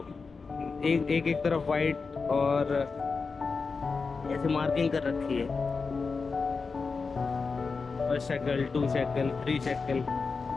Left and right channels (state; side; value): quieter; right; 4.7 dB